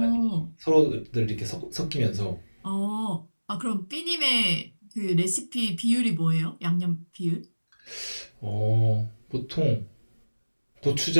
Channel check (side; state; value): both; inverted; correlation -1.00